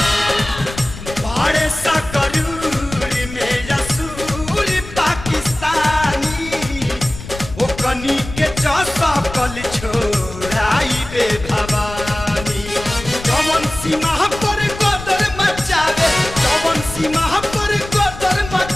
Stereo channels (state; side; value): noise; left; rumble, 12 dB below the sound